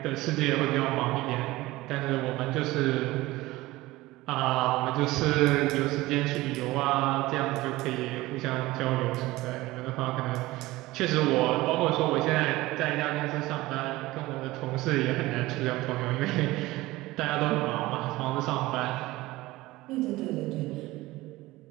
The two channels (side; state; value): left; quieter; 18.9 dB